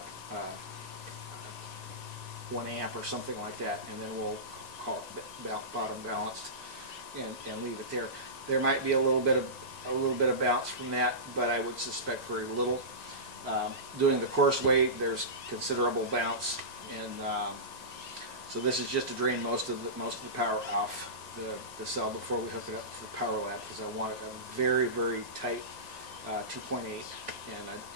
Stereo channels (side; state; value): left; late; 1.9 ms